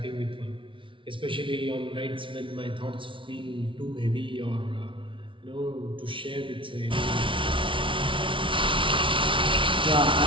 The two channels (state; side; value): late; left; 0.25 ms